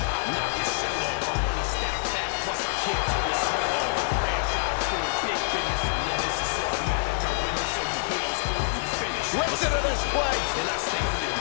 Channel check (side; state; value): right; silent; digital silence